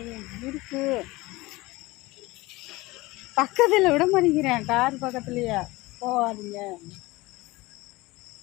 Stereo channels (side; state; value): right; quieter; 21.1 dB